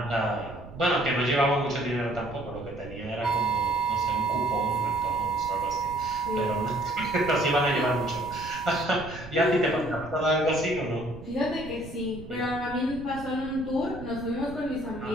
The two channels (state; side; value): noise; right; rumble, 15 dB below the sound